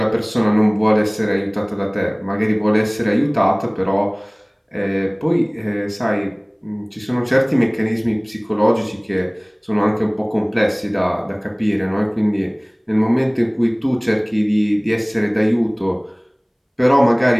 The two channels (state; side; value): identical; both; correlation 1.00